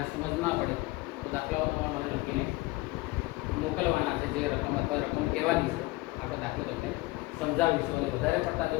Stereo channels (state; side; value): quieter; right; 21.2 dB